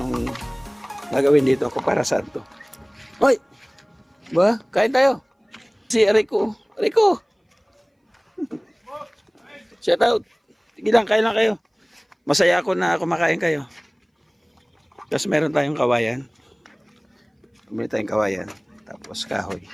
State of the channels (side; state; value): both; identical; correlation 1.00